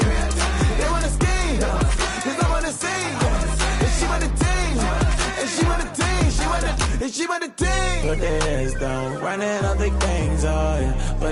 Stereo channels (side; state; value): both; identical; correlation 1.00